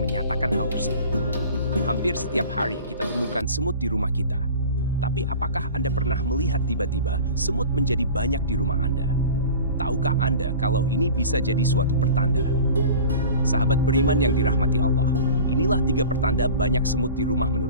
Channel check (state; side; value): inverted; both; correlation -0.39